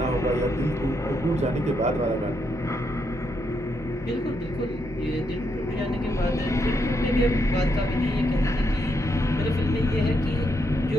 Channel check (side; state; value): both; normal; correlation 0.79